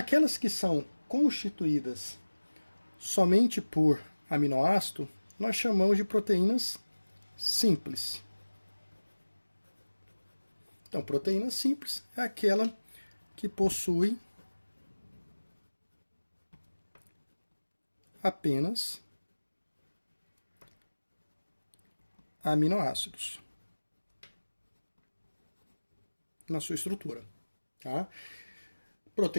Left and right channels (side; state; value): both; inverted; correlation -1.00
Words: que são constituídas somente por aminoácido, nós chamamos de proteínas simples. Então, proteína simples é aquela que possui apenas aminoácidos na sua estrutura. Tá?